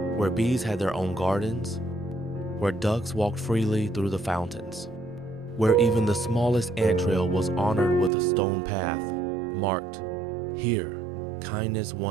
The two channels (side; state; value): left; drops out; at 8.1 s